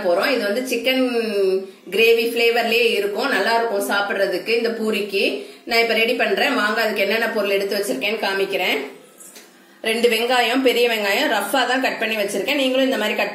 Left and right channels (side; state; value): both; identical; correlation 1.00